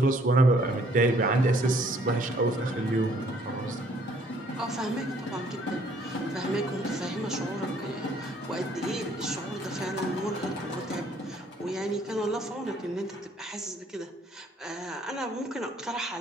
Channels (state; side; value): normal; both; correlation 0.62